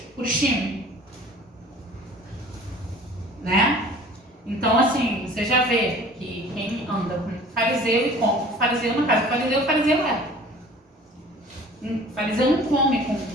Purim, né? Então, assim, você já vê que quem anda com fariseu e come com fariseu na casa do fariseu é. O fariseu não come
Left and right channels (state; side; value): normal; both; correlation 0.46